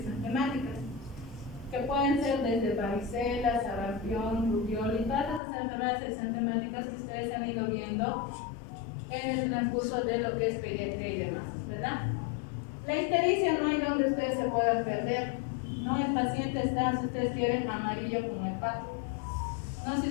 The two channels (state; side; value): drops out; right; at 5.4 s